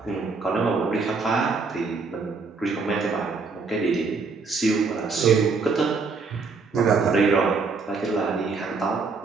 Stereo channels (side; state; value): left; quieter; 4.5 dB